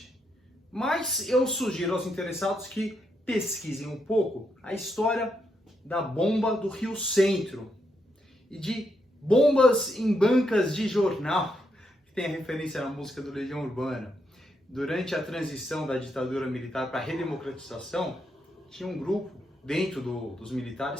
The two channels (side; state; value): both; normal; correlation 0.80